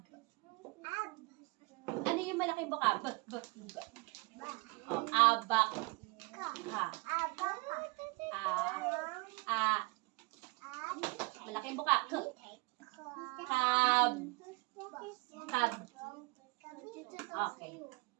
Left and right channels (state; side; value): quieter; left; 26.2 dB